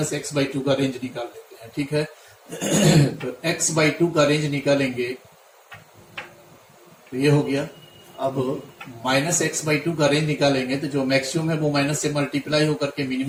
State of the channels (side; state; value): both; identical; correlation 1.00